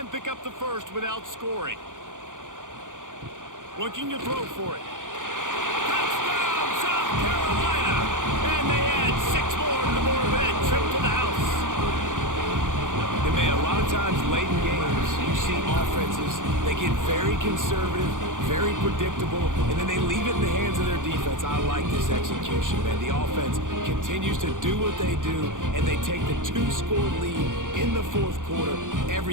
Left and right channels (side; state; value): left; late; 0.88 ms